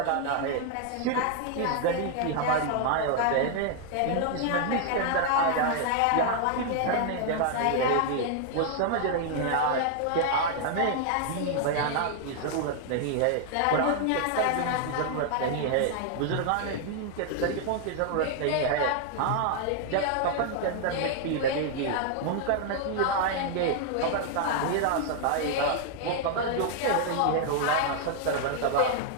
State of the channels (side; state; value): both; different; correlation 0.00